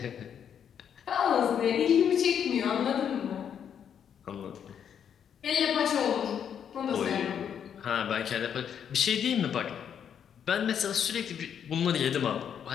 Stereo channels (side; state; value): right; quieter; 8.3 dB